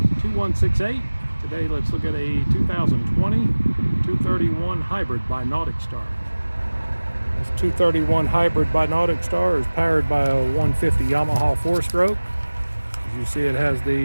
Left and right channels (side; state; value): both; inverted; correlation -1.00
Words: Today let's look at a 2020 231 Hybrid by NauticStar. This 231 Hybrid by NauticStar is powered by a 150 Yamaha 4-stroke. As you see, it has